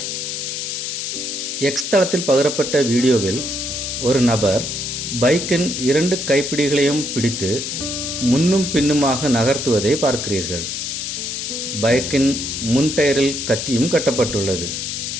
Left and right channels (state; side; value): noise; left; hiss, 4 dB below the sound